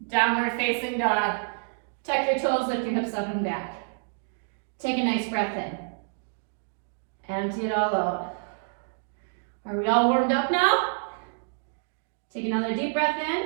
Downward facing dog. Tuck your toes, lift your hips up and back. Take a nice breath in. Empty it all out. Are we all warmed up now? Take another deep breath in.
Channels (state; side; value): silent; left; digital silence